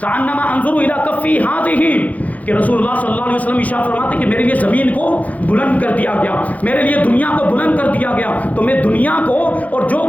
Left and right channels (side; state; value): right; late; 0.074 ms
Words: کانما انظر الی کفی ہذہ، کہ رسول اللہ صلی اللہ علیہ وسلم ارشاد فرماتے ہیں کہ میرے لیے زمین کو بلند کر دیا گیا، میرے لیے دنیا کو بلند کر دیا گیا، تو میں دنیا کو اور جو